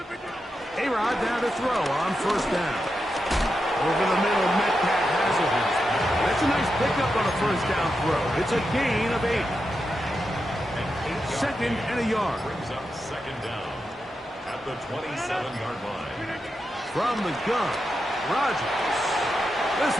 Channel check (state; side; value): normal; both; correlation 0.87